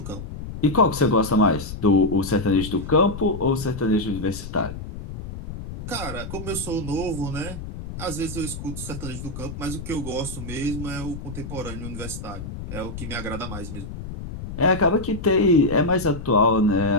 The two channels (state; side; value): noise; left; rumble, 9 dB below the sound